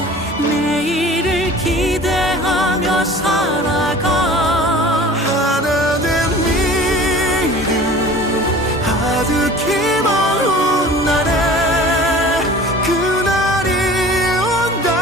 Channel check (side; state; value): both; normal; correlation 0.43